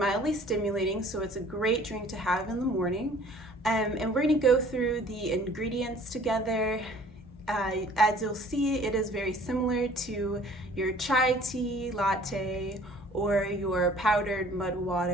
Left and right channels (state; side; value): normal; both; correlation 0.52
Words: stimulating, so it's a great drink to have in the morning. And we're going to go through the ingredients together. As you'll see, it is very similar to your chai tea, latte, or your powdered mud